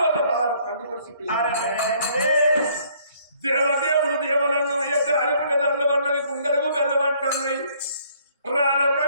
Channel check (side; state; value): both; inverted; correlation -0.62